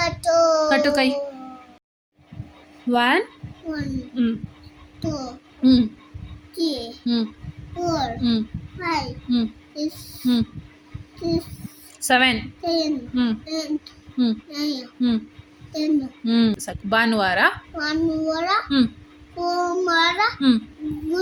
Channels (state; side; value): identical; both; correlation 1.00